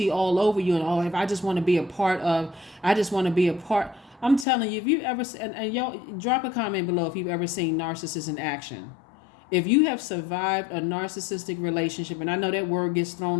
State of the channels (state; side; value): drops out; right; at 4.5 s